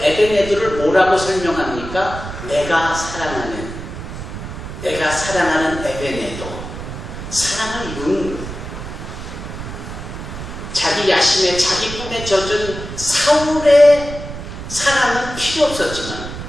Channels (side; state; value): right; noise; rumble, 9 dB below the sound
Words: 에베네도를 뭐라고 설명합니까? 내가 사랑하는 에베네도. 사랑을 이루는 거예요. 자기 야심에 자기 꿈에 젖은 사울의 사랑은 필요 없었지만